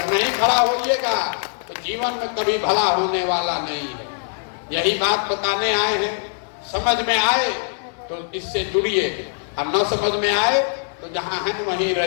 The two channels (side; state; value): right; silent; digital silence